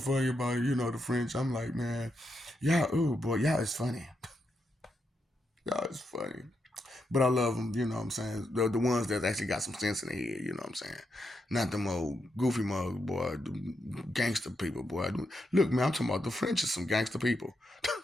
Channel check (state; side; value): normal; both; correlation 0.83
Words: about it. The French. I'm like, man, y'all, oh boy, y'all is funny. Y'all is funny. But I love them, you know what I'm saying? The ones that actually got some sense in their head, you know what I'm saying? Not them old goofy mugs, boy, the gangster people, boy. Look, man, I'm talking about the French is some gangster people.